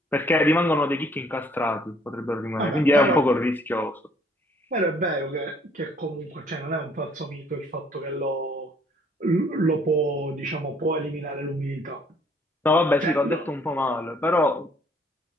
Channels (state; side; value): normal; both; correlation 0.61